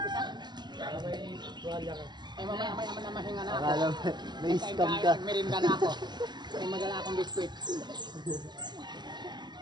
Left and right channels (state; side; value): late; left; 0.21 ms